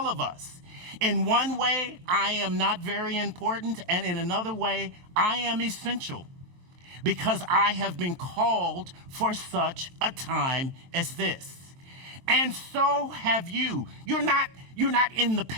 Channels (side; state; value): left; late; 23 ms